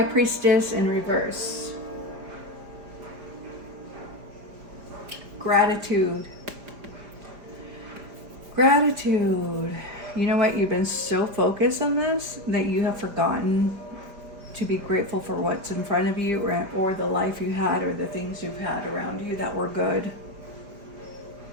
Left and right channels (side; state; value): left; late; 5.0 ms